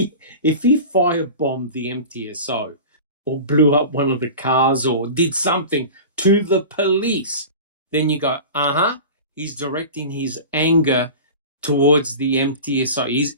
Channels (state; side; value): inverted; both; correlation -0.34